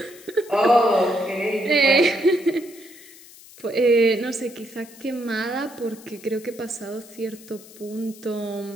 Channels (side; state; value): left; noise; hiss, 21 dB below the sound